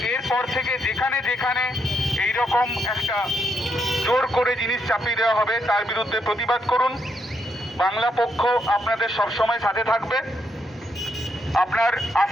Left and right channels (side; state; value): both; normal; correlation 0.78